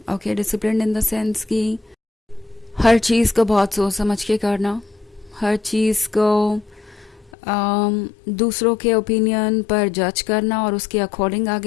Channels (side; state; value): right; drops out; at 7.3 s